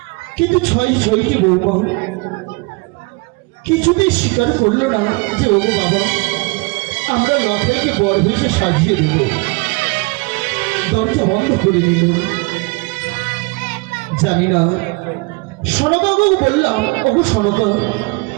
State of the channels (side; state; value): left; quieter; 27.6 dB